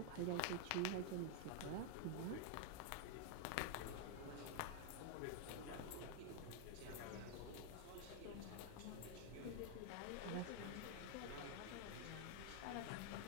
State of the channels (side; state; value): both; different; correlation 0.00